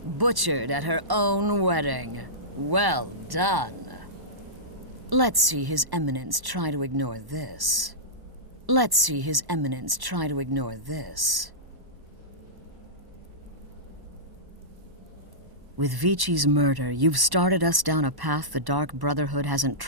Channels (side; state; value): left; late; 1.1 ms